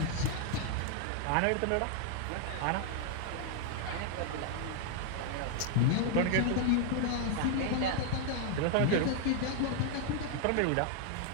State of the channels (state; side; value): different; both; correlation 0.00